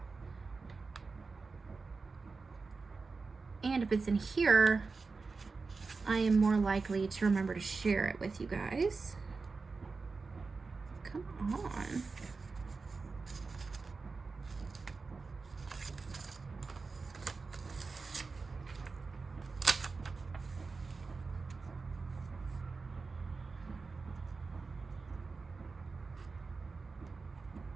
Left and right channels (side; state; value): left; quieter; 4.3 dB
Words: And if it's in here, I am more likely to remember to share it with you guys. Come on.